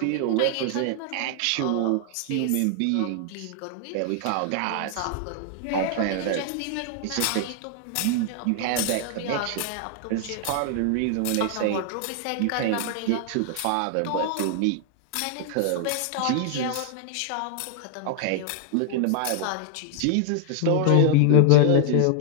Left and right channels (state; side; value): different; both; correlation 0.00